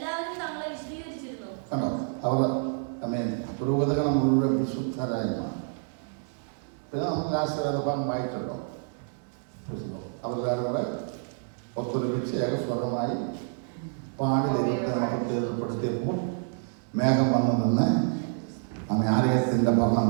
തങ്ങളെ വിശദീകരിച്ചിരുന്നു. അവർ പുരോഹിതകൾ മുഴുവൻ വിശുദ്ധരായിരുന്നു. പിന്നെ നമുക്ക് ആശീർവാദം വായിക്കട്ടോ. അവരുടെ ഒത്തൊരുമിച്ച് ഏകസ്വരമായി പാടി ദൈവത്തെ നമുക്ക് തീർപ്പെടുത്തിയപ്പോൾ മേഘം വന്നു നിന്ന് നമ്മെ ആലയത്തിൻ്റെ ഭരണം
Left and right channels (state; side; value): silent; left; digital silence